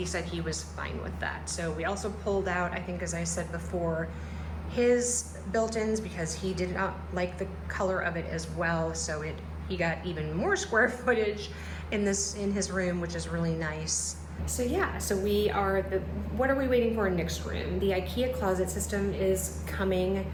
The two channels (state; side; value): identical; both; correlation 1.00